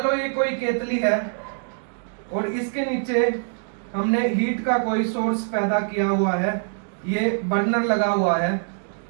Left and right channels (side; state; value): left; silent; digital silence